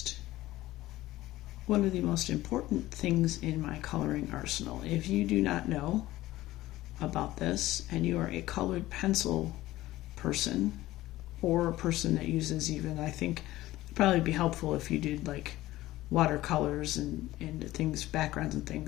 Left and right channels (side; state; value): right; quieter; 16.5 dB